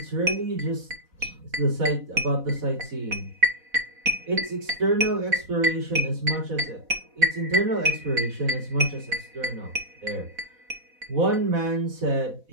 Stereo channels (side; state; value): left; late; 4.1 ms